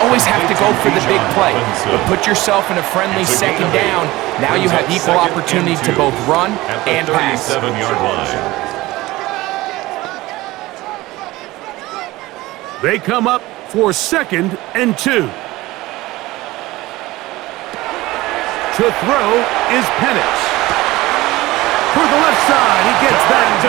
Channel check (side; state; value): left; quieter; 18.9 dB